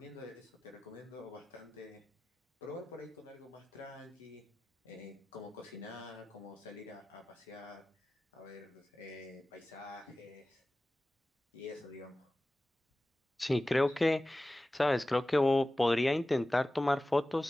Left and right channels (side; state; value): both; normal; correlation 0.96